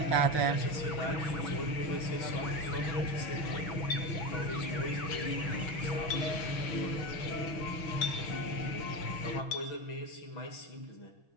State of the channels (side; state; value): right; late; 6.1 ms